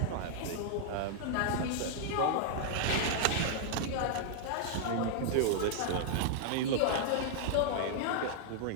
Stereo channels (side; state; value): both; different; correlation -0.01